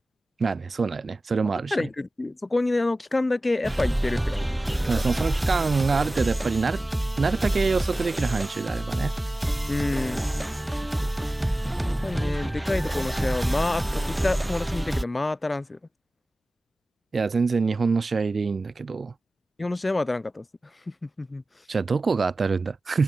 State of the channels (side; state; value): both; normal; correlation 0.96